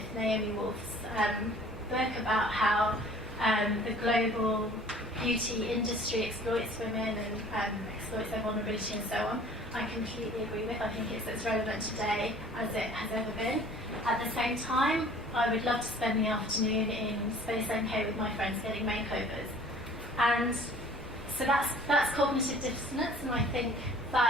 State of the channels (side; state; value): both; normal; correlation 0.50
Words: Naomi Wolf's book about how the global beauty industry exploits women and exploits their vulnerability and so on, I completely agree with. I think it's as relevant today as it has ever been. At the same time, I would love to spend the afternoon in Space NK with my friends getting makeovers. And so that's cognitive dissonance, and I think